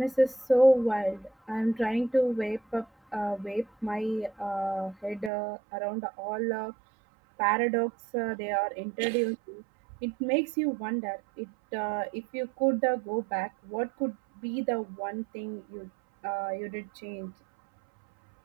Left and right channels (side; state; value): left; drops out; at 5.3 s